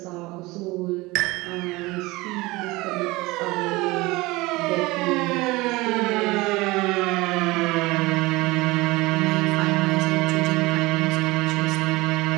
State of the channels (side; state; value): left; quieter; 21.6 dB